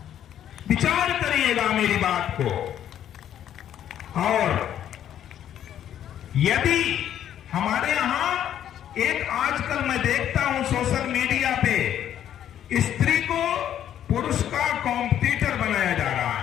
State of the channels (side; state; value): right; quieter; 10.5 dB